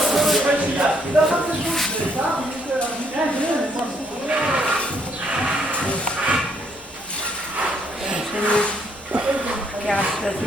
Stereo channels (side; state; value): both; normal; correlation 0.69